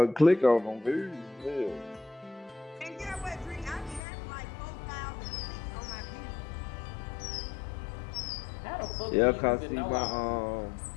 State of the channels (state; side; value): drops out; right; at 4.0 s